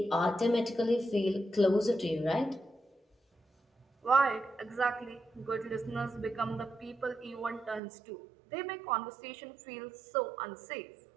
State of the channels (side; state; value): left; drops out; at 7.8 s